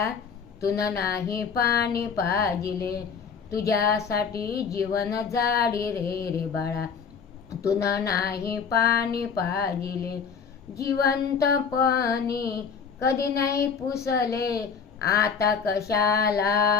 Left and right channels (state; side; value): quieter; right; 6.2 dB